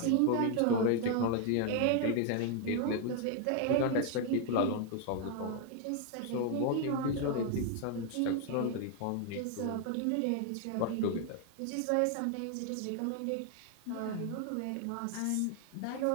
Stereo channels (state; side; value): different; both; correlation 0.00